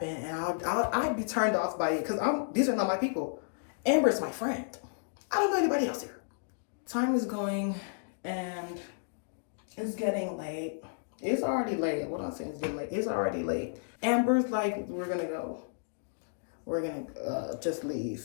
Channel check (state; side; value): silent; right; digital silence